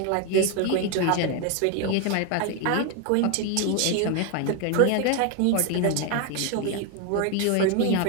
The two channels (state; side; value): different; both; correlation 0.01